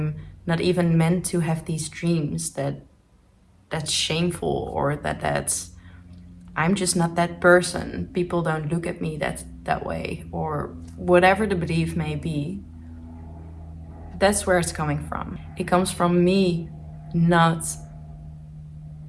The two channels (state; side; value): identical; both; correlation 1.00